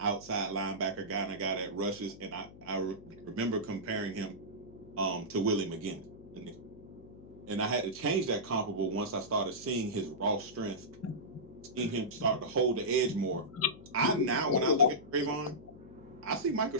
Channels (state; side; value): noise; left; hum, 18 dB below the sound